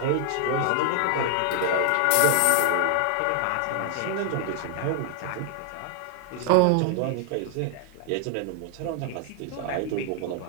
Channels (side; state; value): both; different; correlation 0.00